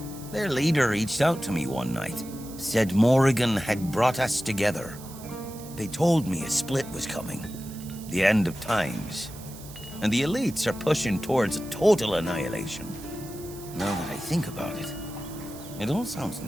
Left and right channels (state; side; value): noise; right; hiss, 17 dB below the sound